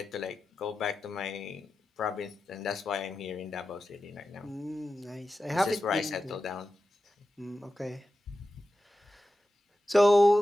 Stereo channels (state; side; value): normal; both; correlation 0.92